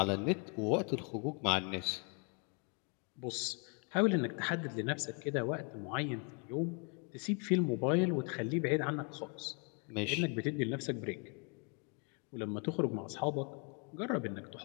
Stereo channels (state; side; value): quieter; right; 36.7 dB